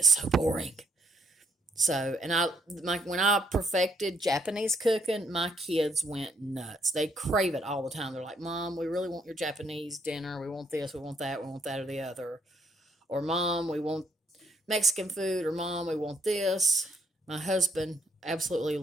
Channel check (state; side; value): normal; both; correlation 0.72